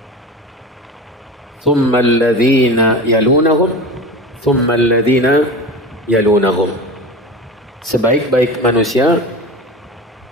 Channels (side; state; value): both; normal; correlation 0.30